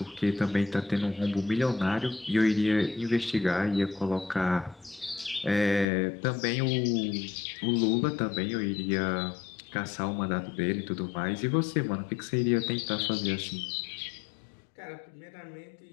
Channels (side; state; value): right; drops out; at 5.9 s